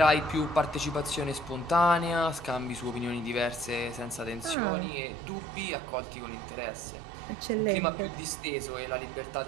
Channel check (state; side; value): drops out; left; at 4.5 s